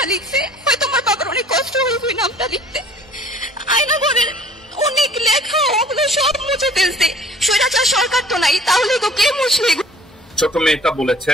লিখছে, হয়তো আমার বাবার অনেক কষ্ট হয়েছে ওই নামটা লিখতে। আয়না ঘরের অনেক লেখা ওগুলো সব মুছে ফেলছে। স্বৈরাচার সরকার তো নাই, তাহলে তো কে মুছবে? ছোট মেয়েটা বলেছে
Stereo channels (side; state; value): both; normal; correlation 0.52